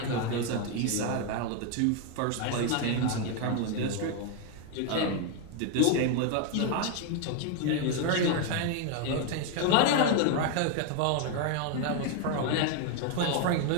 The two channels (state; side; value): different; both; correlation 0.01